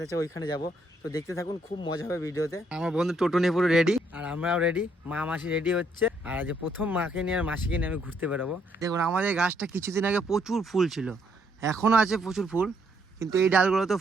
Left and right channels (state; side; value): normal; both; correlation 0.71